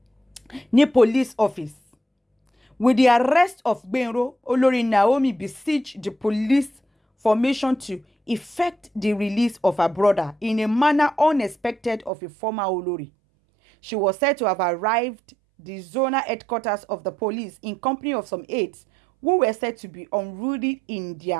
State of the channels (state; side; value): drops out; left; at 12.1 s